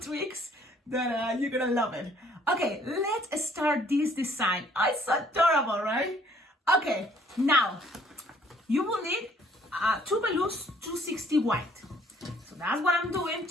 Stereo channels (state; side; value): normal; both; correlation 0.61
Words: that you're gonna love it. Okay, let's start this design. Oh, it's adorable, right? Okay, now, you will need 2 balloons 260 white. So that's what I'm doing,